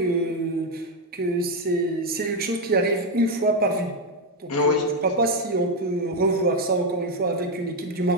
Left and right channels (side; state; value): both; normal; correlation 0.05